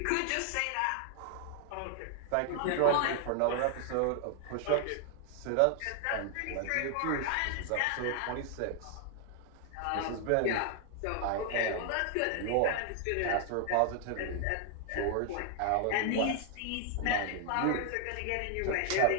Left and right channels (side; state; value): both; different; correlation 0.00